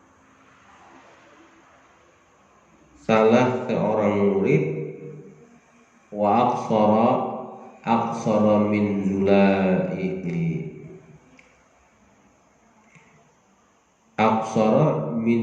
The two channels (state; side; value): identical; both; correlation 1.00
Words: salah seorang murid. Wa aqsara min zulaihi, aqsara